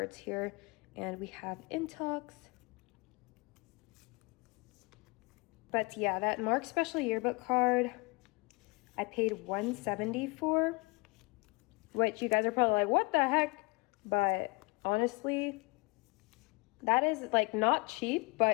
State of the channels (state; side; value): quieter; right; 27.9 dB